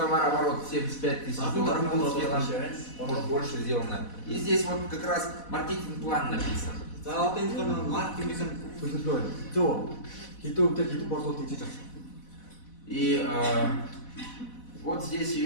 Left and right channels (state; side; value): late; right; 4.1 ms